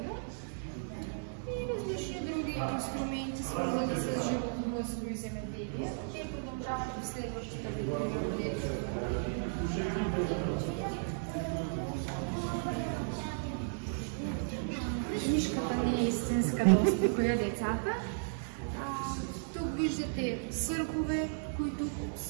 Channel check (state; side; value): silent; left; digital silence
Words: И различни други инструменти, свързани с животновъдство и земеделие. Те продължават в следващата видео. Книжката не е истинска, да успокоя децата. Тук виждате виждате съргове, които